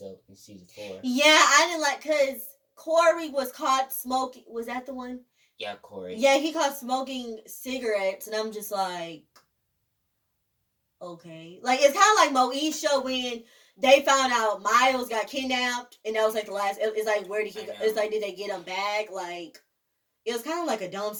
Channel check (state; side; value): identical; both; correlation 1.00